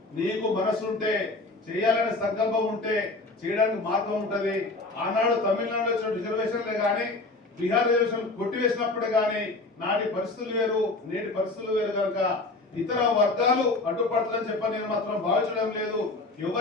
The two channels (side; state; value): right; quieter; 3.2 dB